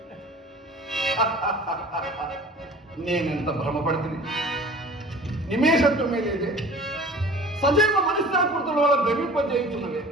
నేనెంత భ్రమపడుతుంది. నిమేషత్వమే లేదే. సజీవ మనిషాకృతుల వల్ల భ్రమింపజేయుచున్నవే.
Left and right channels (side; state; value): both; normal; correlation 0.44